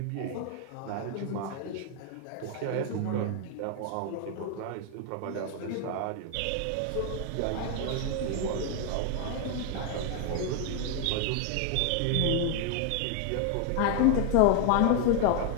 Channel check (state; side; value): different; both; correlation 0.01